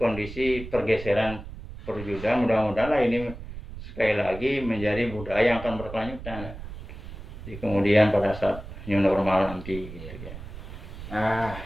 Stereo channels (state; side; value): noise; right; rumble, 12 dB below the sound